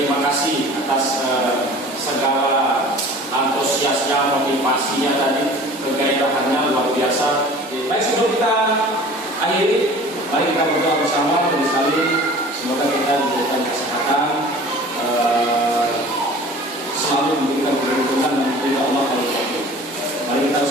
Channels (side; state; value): both; normal; correlation 0.44